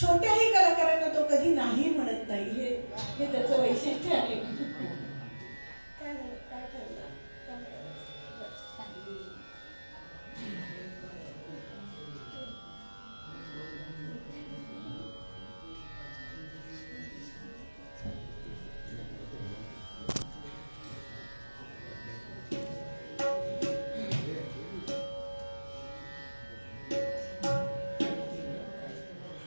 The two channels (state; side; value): inverted; both; correlation -1.00